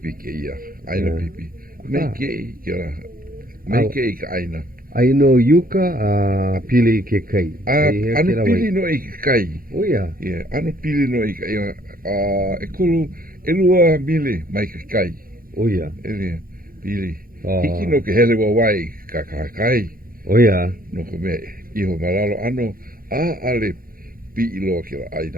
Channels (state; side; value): late; left; 0.42 ms